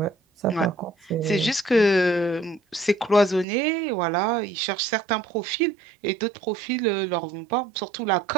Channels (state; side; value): drops out; left; at 3.5 s